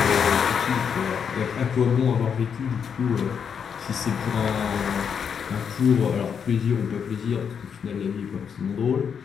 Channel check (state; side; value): quieter; right; 7.1 dB